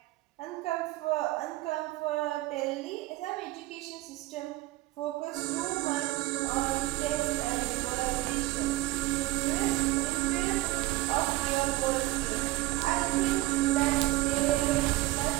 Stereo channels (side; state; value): left; quieter; 19.2 dB